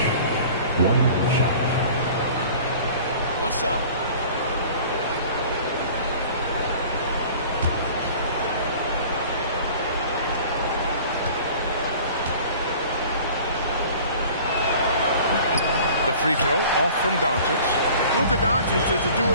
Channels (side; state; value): both; inverted; correlation -0.46